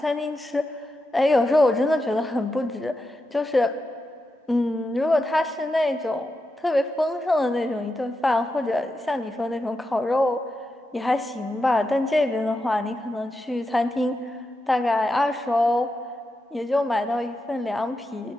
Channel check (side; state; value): both; normal; correlation 0.87